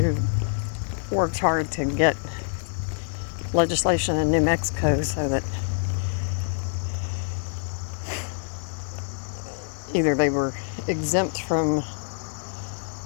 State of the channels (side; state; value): right; silent; digital silence